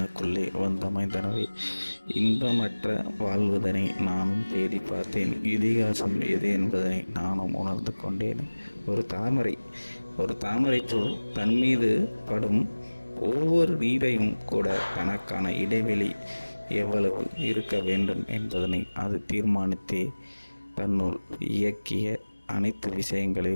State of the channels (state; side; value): inverted; both; correlation -1.00